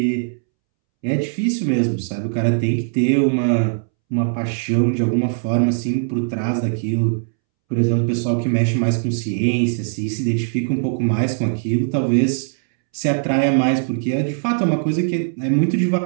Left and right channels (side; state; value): left; silent; 66 dB below the other